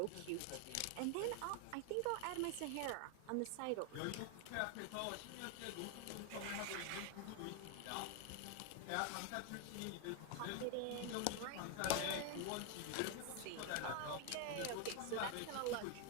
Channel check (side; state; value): both; different; correlation 0.01